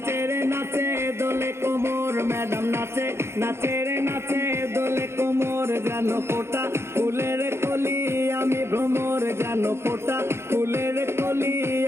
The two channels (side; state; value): left; late; 0.12 ms